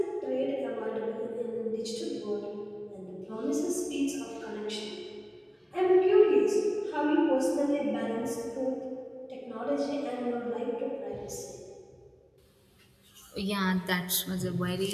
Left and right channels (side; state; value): both; identical; correlation 1.00